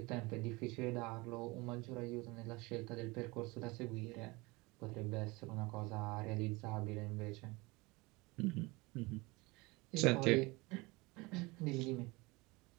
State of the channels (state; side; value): quieter; left; 24.1 dB